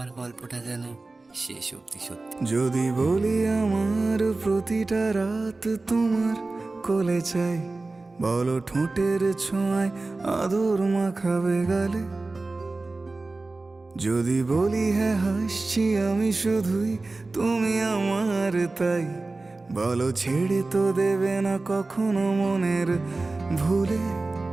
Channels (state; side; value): quieter; left; 3.4 dB